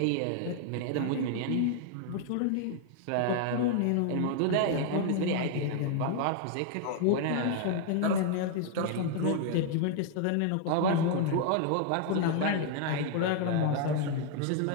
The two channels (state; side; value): different; both; correlation 0.00